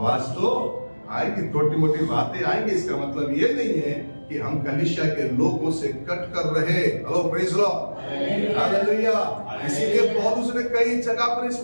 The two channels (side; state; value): both; inverted; correlation -1.00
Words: तो आएगी, छोटी मोटी बातें आएंगी। इसका मतलब ये नहीं है कि हम कलीसिया के लोगों से कट कर रहे। Hello, praise Lord, hallelujah. इसीलिए पौलुस ने कई जगह पर इस